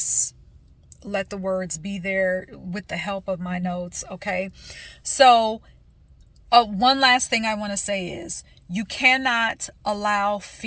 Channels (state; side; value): identical; both; correlation 1.00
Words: let the words be there with the help of my notes, okay? So, one last thing I want to say is you cannot allow